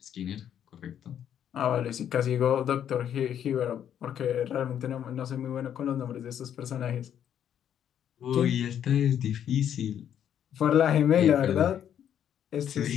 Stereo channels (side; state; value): right; quieter; 9.6 dB